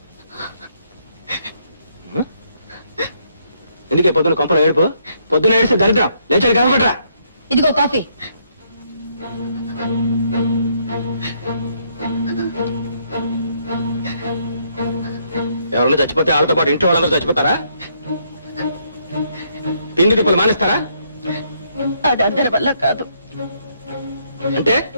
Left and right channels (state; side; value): inverted; both; correlation -0.72